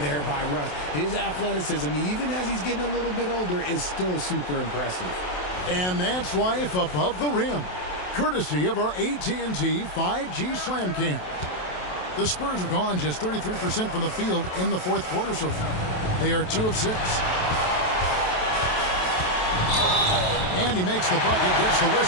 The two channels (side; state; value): right; late; 27 ms